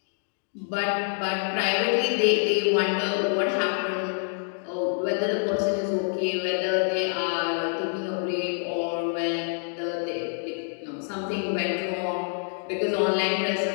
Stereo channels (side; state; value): right; silent; 57 dB below the other